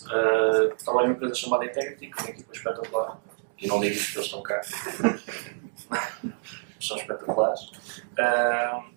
trabalho numa empresa chamada Integrity, com uma equipa espetacular. E não digo isto porque eles estão cá. São espetaculares.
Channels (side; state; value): left; silent; digital silence